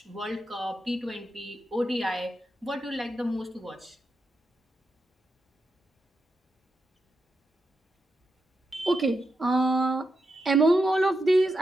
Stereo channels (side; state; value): both; normal; correlation 0.86